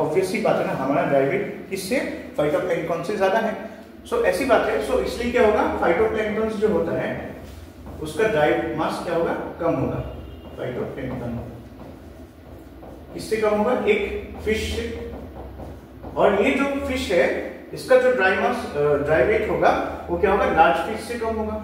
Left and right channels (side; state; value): both; identical; correlation 1.00